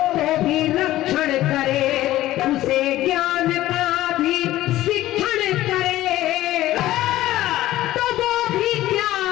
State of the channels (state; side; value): quieter; right; 15.2 dB